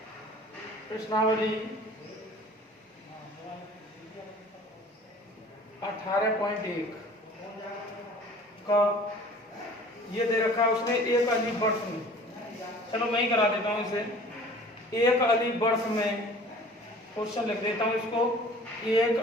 प्रश्नावली 18.1 का ये दे रखा है उसने, एक अलीफ बर्ड्स में। चलो मैं ही करा देता हूँ इसे। एक अलीफ बर्ड्स में क्वेश्चन लिख देता हूँ इसको।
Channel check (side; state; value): both; normal; correlation 0.46